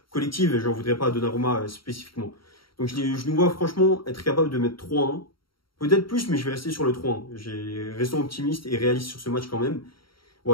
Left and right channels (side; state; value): right; late; 0.74 ms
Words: collective et j'en voudrais pas à Donnarumma spécifiquement. Donc, je nous vois franchement être capable de mettre 3-1. Peut-être plus, mais je vais rester sur le 3-1. Restons optimiste et réaliste sur ce match quand même.